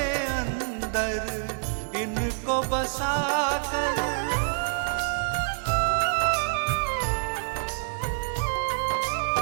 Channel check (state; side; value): silent; left; digital silence